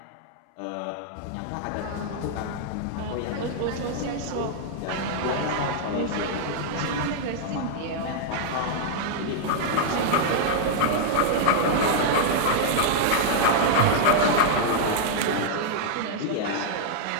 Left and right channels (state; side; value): different; both; correlation -0.01